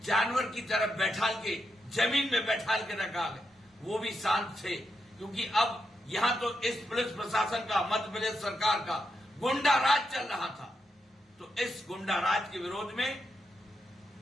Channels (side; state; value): both; normal; correlation 0.84